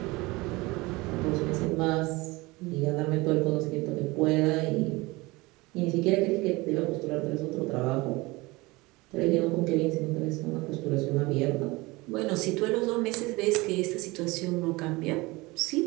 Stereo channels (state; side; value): quieter; left; 22.6 dB